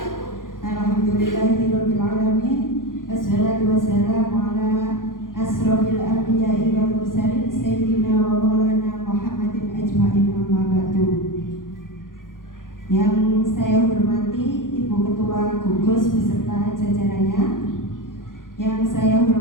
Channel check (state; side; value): late; right; 0.90 ms